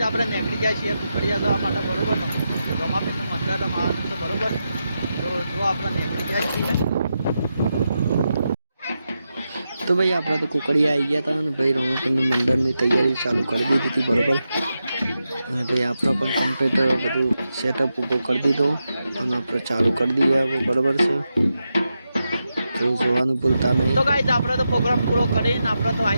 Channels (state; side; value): inverted; both; correlation -0.88